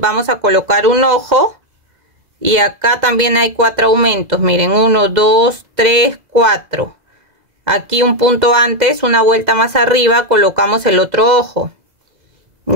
a colocar un ojo y acá también hay 4 aumentos. Miren, 1, 2, 3, 4. Aquí un punto antes, una vuelta más arriba, colocamos el otro ojo.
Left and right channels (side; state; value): left; late; 2.0 ms